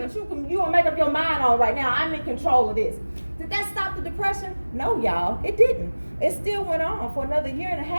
that you gonna make up your mind on right now. I'm in control of this. Did that stop the depression? No, y'all, it didn't. It still went on for another year and a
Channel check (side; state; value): both; inverted; correlation -1.00